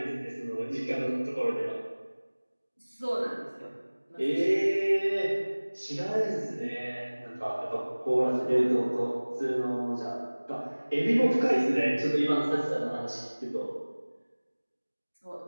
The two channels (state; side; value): inverted; both; correlation -1.00